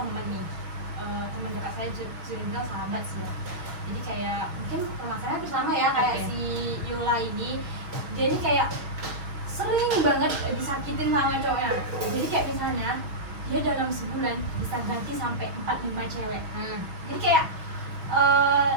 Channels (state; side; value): late; left; 6.3 ms